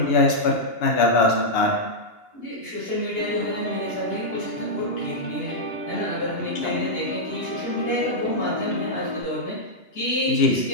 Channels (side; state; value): right; late; 2.8 ms